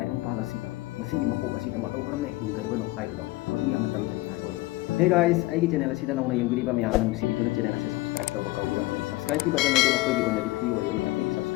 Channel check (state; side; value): quieter; right; 19.7 dB